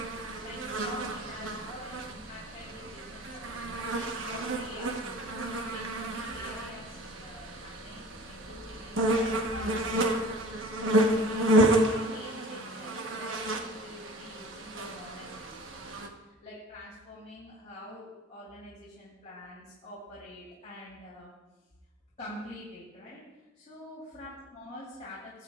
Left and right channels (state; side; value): normal; both; correlation 0.43